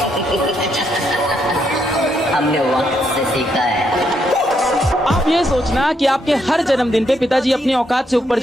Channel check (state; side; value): normal; both; correlation 0.76